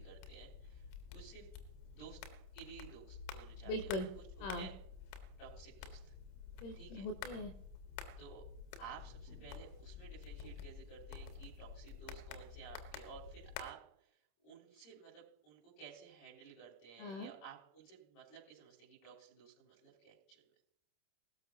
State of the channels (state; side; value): late; right; 26 ms